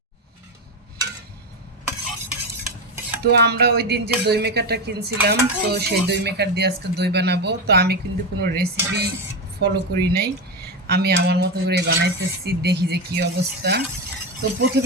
তো আমরা ওই দিন যে দই মেকারটা কিনছিলাম, তো সেই দই মেকার দিয়ে আজকে দই বানাবো। তো আমি কিন্তু কোনো রেসিপি ফলো করি নাই, আমি আমার মতো করে বানাইতেছি, দেখি যে কি অবস্থা। তো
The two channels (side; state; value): both; normal; correlation 0.14